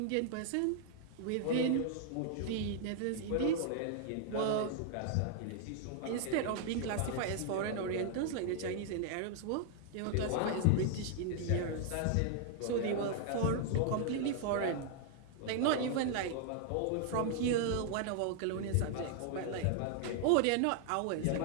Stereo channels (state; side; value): different; both; correlation 0.00